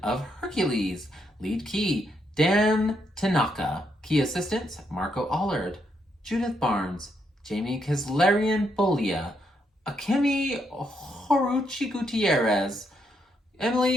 of Hercules. Lead key, Dan Tanaka. Key assistants, Marco Allard, Judith Barnes, Jamie Kislarian Bolia, Akemi Horuchi Gutierrez,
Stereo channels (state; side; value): normal; both; correlation 0.77